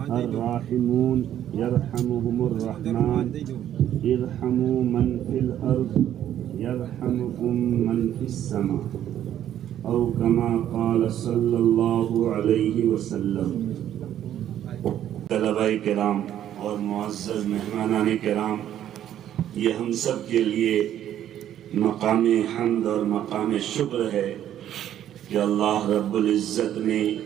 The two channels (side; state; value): left; quieter; 11.1 dB